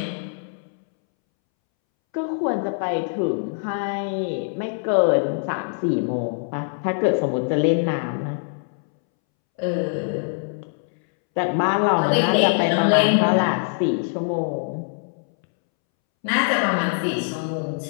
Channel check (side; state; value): right; silent; 63 dB below the other